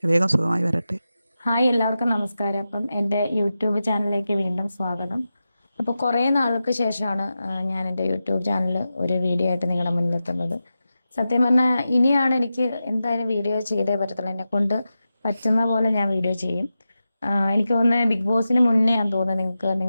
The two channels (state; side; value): inverted; both; correlation -0.92